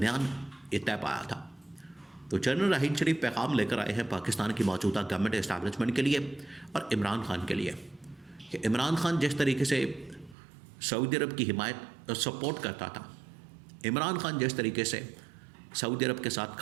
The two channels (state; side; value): drops out; left; at 10.4 s